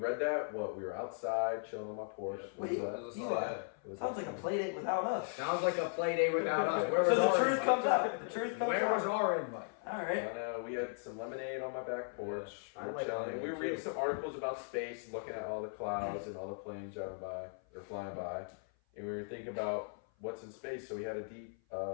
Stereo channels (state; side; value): silent; right; 53 dB below the other